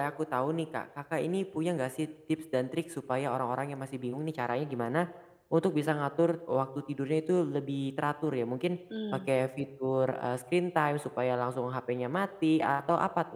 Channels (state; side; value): identical; both; correlation 1.00